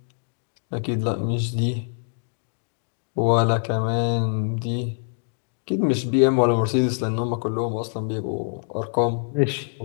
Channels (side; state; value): right; silent; digital silence